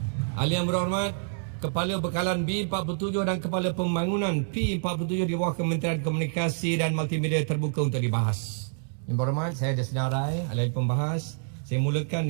Ahli yang berhormat, Kepala Bekalan B47 dan Kepala Pembangunan P47 di bawah Kementerian Komunikasi dan Multimedia terbuka untuk dibahas. Yang berhormat, saya ada senarai ahli pembahas. Saya mulakan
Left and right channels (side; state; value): left; silent; digital silence